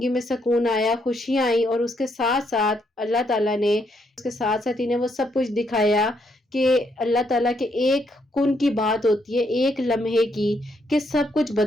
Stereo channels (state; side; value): normal; both; correlation 0.75